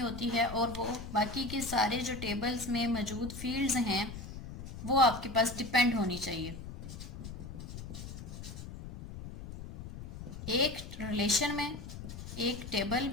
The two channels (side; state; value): left; noise; rumble, 10 dB below the sound